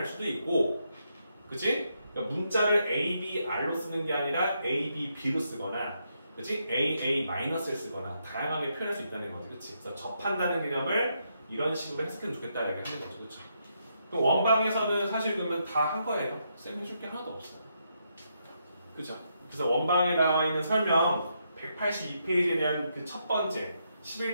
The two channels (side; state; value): both; inverted; correlation -0.79